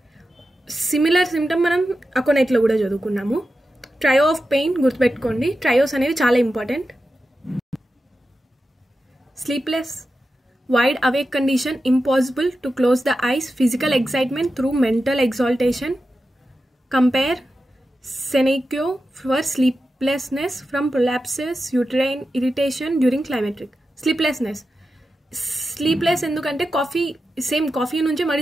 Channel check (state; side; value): normal; both; correlation 0.91